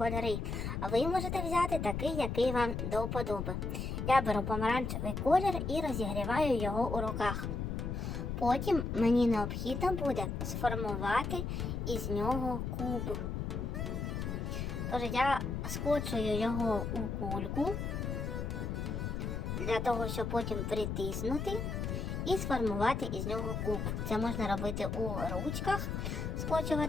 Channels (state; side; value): noise; left; rumble, 3 dB below the sound